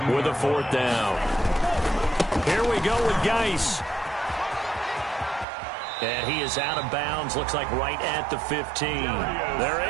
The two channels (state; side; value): drops out; left; at 5.5 s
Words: with a 4th down. Here we go with Geis. And he is out of bounds, looks like right at the 15. They're